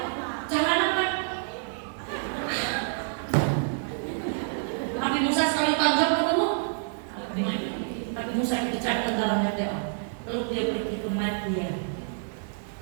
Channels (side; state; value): left; silent; digital silence